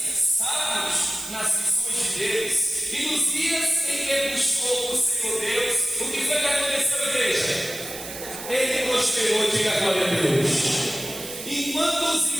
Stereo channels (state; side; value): noise; right; hiss, 10 dB below the sound